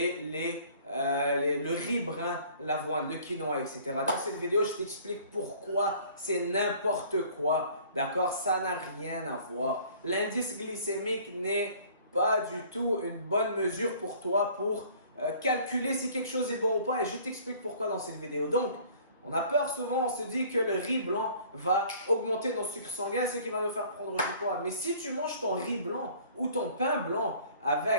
le riz brun, l'avoine, le quinoa, etc. Dans cette vidéo, je t'explique pourquoi c'est n'importe quoi. D'accord? Ça n'a rien à voir. L'indice glycémique n'est pas du tout une bonne mesure pour toi pour calculer si quelque chose est bon ou pas et je t'explique pourquoi dans cette vidéo. Donc, on a peur souvent, on se dit que le riz blanc va augmenter nos sucres sanguins, ce qui va nous faire prendre du poids. Mais si tu manges ton riz blanc ou ton pain blanc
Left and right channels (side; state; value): both; inverted; correlation -0.53